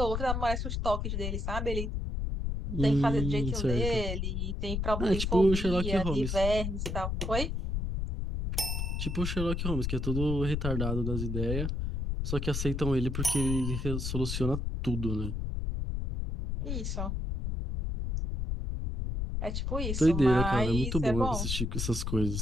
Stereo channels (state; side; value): noise; left; rumble, 1 dB below the sound